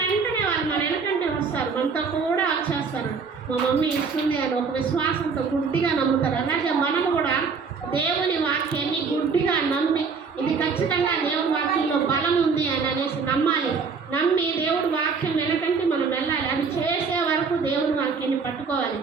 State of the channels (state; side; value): quieter; left; 5.3 dB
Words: వెంటనే వాళ్ళు మన వెనకంటే వస్తారు, మనతో కూడా వచ్చేస్తారు. మా మమ్మీ ఇస్తుంది అని ఒక విశ్వాసంతో గుడ్డిగా నమ్ముతారు. అలాగే మనము కూడా దేవుని వాక్యాన్ని గుడ్డిగా నమ్మి ఇది ఖచ్చితంగా దేవుడి వాక్యంలో బలం ఉంది అని అనేసి నమ్మాలి. నమ్మి దేవుడి వాక్యం వెనకంటే మనం వెళ్ళాలి. అది చేసే వరకు దేవుడి వాక్యాన్ని పట్టుకోవాలి.